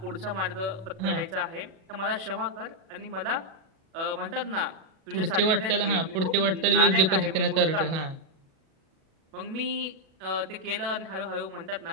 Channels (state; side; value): late; left; 37 ms